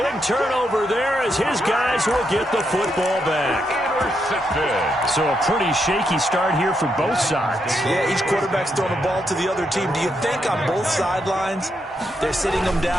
turnover there as his guys will get the football back. Intercepted. So a pretty shaky start here for both sides. Yeah, each quarterback's throwing a ball to the other team. Do you think on both sidelines they're sitting them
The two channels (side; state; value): both; normal; correlation 0.80